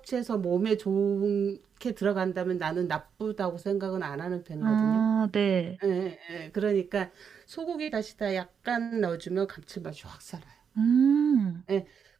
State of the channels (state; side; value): quieter; left; 7.0 dB